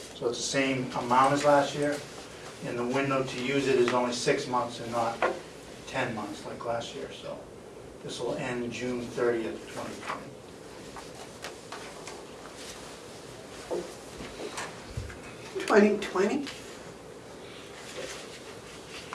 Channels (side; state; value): both; identical; correlation 1.00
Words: So it's the same amount as last year, and the window to use it is only 6 months and not 10 months like last year, so this will end June 30th, 2020. $2020?